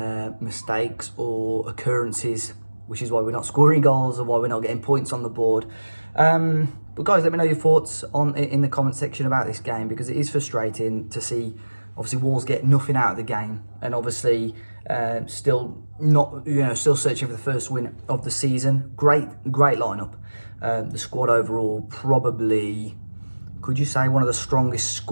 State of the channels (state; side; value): inverted; both; correlation -1.00